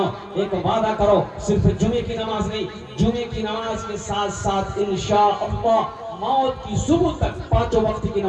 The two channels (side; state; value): both; identical; correlation 1.00